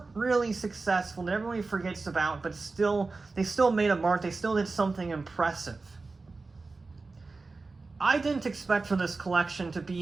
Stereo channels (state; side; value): quieter; left; 3.8 dB